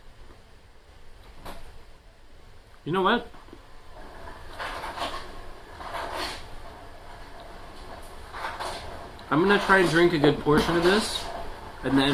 You know what? I'm gonna try and drink a good portion of this, and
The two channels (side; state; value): both; identical; correlation 1.00